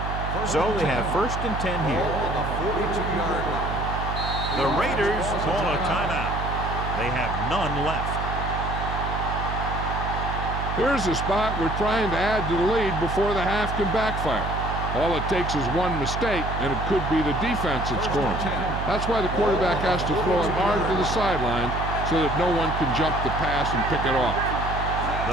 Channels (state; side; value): noise; right; hum, 4 dB below the sound